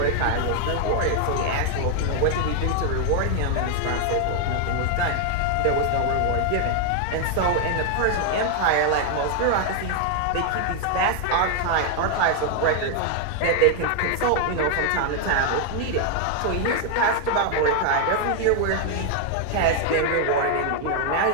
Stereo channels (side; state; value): both; different; correlation 0.00